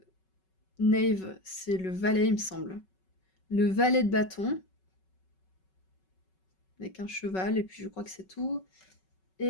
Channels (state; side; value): late; right; 5.3 ms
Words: Knave, c'est le valet, il me semble. Le valet de bâton, avec un cheval, et puis je crois que c'est tout.